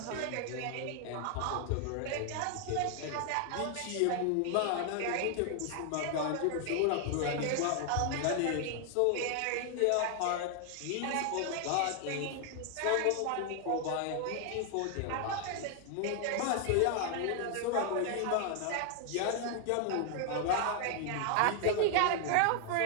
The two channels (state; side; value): different; both; correlation 0.00